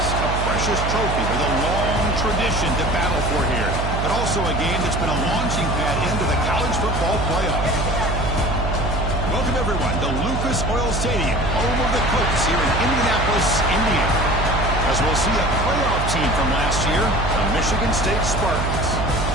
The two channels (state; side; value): noise; right; hum, 1 dB below the sound